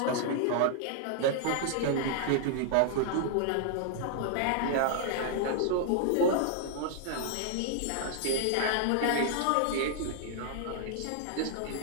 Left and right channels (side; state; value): both; different; correlation -0.01